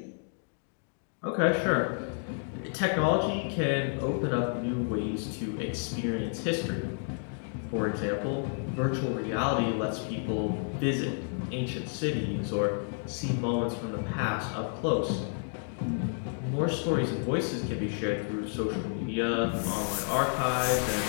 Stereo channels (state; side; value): silent; right; 57 dB below the other